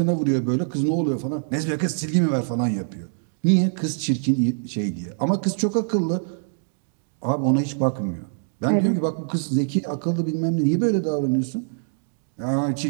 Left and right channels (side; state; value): left; silent; digital silence